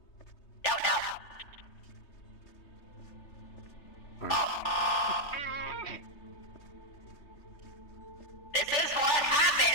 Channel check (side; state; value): right; late; 3.4 ms